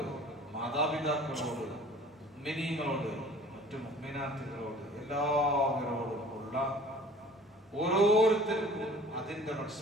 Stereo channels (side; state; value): both; normal; correlation 0.48